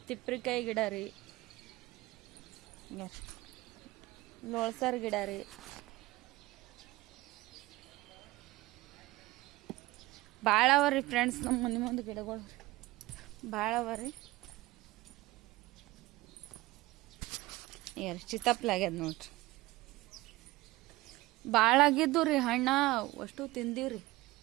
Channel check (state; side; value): quieter; left; 19.7 dB